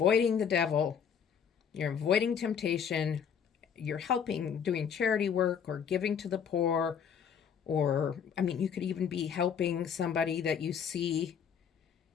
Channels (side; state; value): right; quieter; 7.5 dB